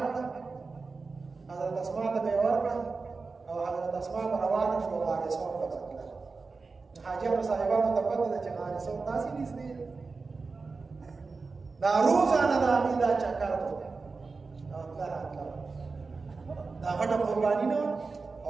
کړه حضرت اسما ته به یې ورکړه او حضرت اسما به روانه شوه غارسور ته به تلله حاجیانو صاحبانو ته پته ده چې غارسور داسې نږدې دی دا روزانه د هغې دا چکر و او تله راتله دا غټه قرباني نه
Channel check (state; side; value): quieter; left; 4.2 dB